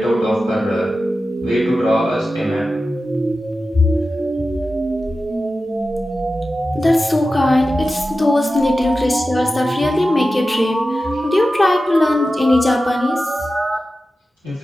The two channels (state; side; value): normal; both; correlation 0.93